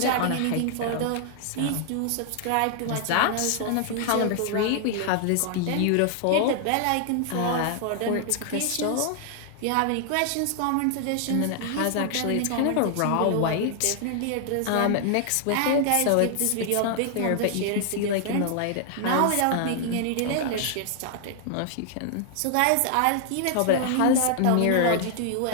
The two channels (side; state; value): both; different; correlation 0.00